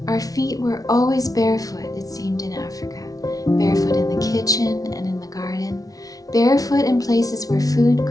Our feet were always barefoot, it seemed, in Africa. Barefoot in the kitchen and in the garden. Barefoot in places where food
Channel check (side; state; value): right; late; 0.18 ms